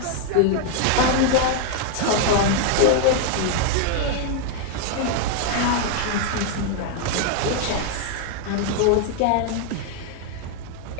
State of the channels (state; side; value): different; both; correlation 0.00